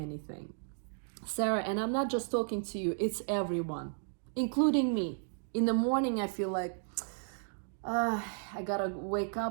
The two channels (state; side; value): silent; left; digital silence